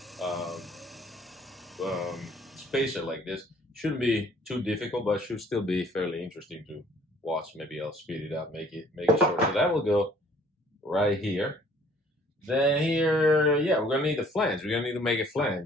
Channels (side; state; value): both; normal; correlation 0.57